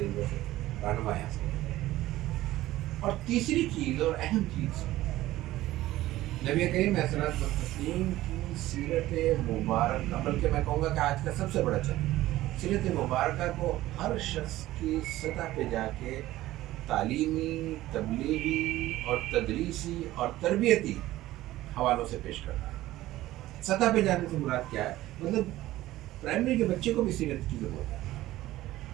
سے رہنمائی حاصل کریں۔ اور تیسری چیز اور اہم چیز، نبی کریم علیہ الصلوۃ والتسلیم کی سیرت مبارکہ، بلکہ میں کہوں گا کہ آج کا سب سے بڑا چیلنج، سیرت مبارکہ کو ہر شخص کی سطح پہ جا کے تعلیمی، تبلیغی اور تدریسی اور تربیتی حوالوں سے پیش کرنا ہے۔ سطح پہ جانے سے مراد کیا ہے؟ مطلب پرائمری کے بچے کو بھی سیرت کی ضرورت ہے،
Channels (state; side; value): quieter; left; 15.9 dB